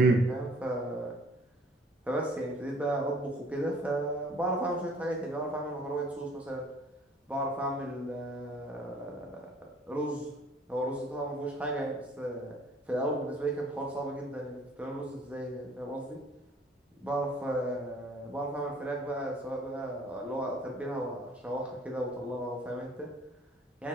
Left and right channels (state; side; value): normal; both; correlation 0.55